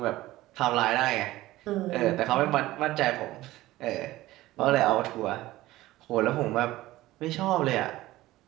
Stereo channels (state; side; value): quieter; left; 16.9 dB